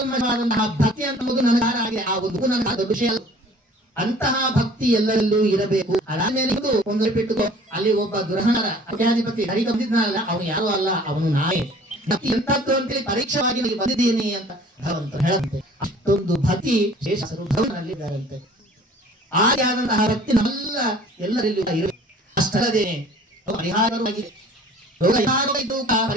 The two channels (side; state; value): both; normal; correlation 0.50